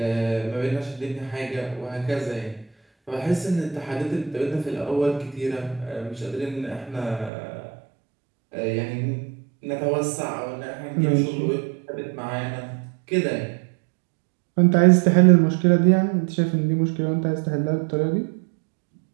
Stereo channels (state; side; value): drops out; left; at 7.3 s